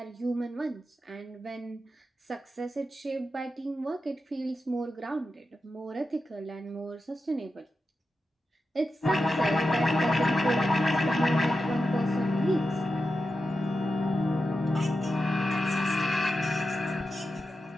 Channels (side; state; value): both; normal; correlation 0.90